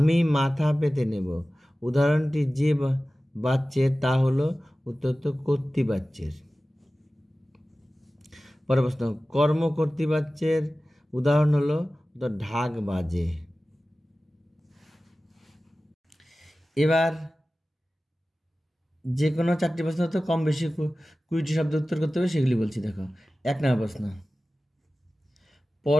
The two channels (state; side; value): normal; both; correlation 0.96